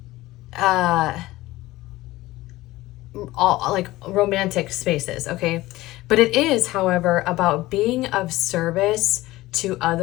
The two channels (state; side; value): quieter; right; 17.9 dB